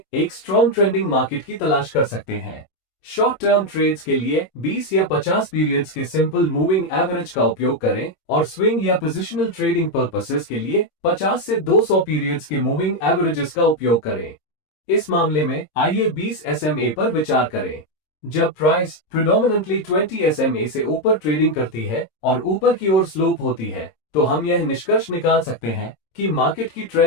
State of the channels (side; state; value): right; late; 26 ms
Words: एक स्ट्रॉन्ग ट्रेंडिंग मार्केट की तलाश कर सकते हैं। शॉर्ट टर्म ट्रेड्स के लिए 20 या 50 पीरियड्स के सिंपल मूविंग एवरेज का उपयोग करें और स्विंग या पोजिशनल ट्रेडिंग पर्पसेस के लिए 50 से 200 पीरियड्स के मूविंग एवरेजेस का उपयोग करें। इस मामले में आइए 20 SMA पर विचार करें। जब प्राइस प्रिडोमिनेंटली 20 SMA से ऊपर ट्रेडिंग करती है और ऊपर की ओर स्लोप होती है तो हम यह निष्कर्ष निकाल सकते हैं कि मार्केट की